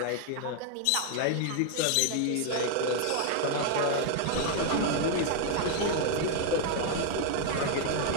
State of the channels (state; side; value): different; both; correlation 0.00